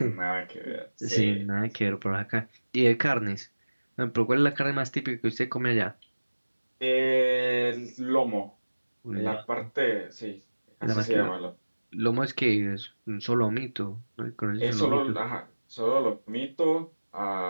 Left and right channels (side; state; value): both; inverted; correlation -1.00